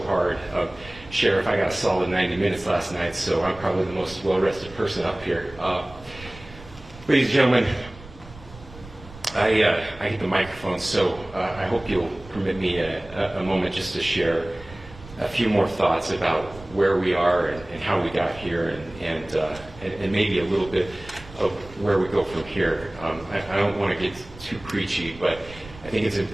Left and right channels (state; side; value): noise; right; rumble, 18 dB below the sound